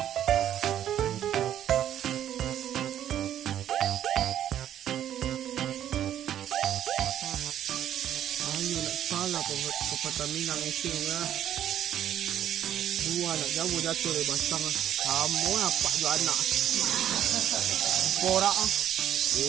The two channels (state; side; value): quieter; left; 10.9 dB